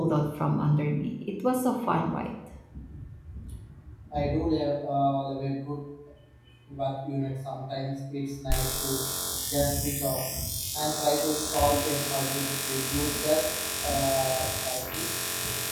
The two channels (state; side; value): identical; both; correlation 1.00